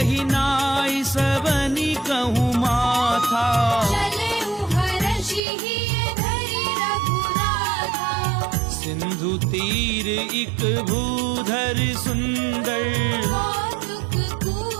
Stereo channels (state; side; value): drops out; left; at 5.4 s